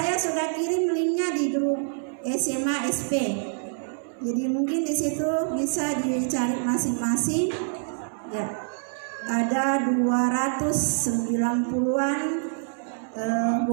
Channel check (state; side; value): silent; left; digital silence